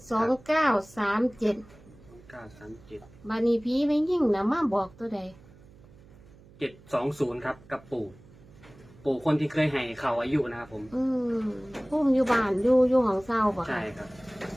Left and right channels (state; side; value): noise; right; hum, 24 dB below the sound